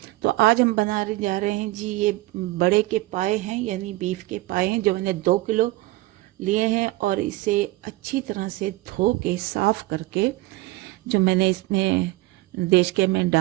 तो आज हम बनाने जा रहे हैं जी, ये बड़े के पाए हैं, यानी बीफ के पाए हैं, जो मैंने 2 किलो लिए हैं और इसे अच्छी तरह से धो के साफ़ करके जो मैंने इसमें देचके में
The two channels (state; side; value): quieter; left; 19.2 dB